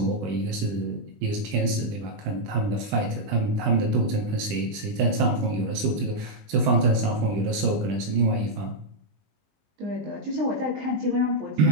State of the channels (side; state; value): left; late; 20 ms